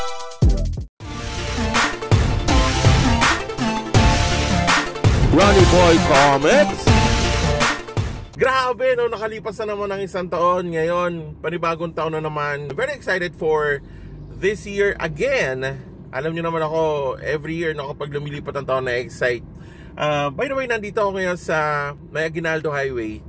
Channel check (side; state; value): both; identical; correlation 1.00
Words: Ronnie Boy Comics. Grabe, no, nakalipas na naman ng isang taon. Ngayon, panibagong taon na naman. Very excited for this year again. Alam nyo naman ako, every year na kapag lumilipat ang taon na excite. By the way, nandito ako ngayon sa May Aguinaldo Highway.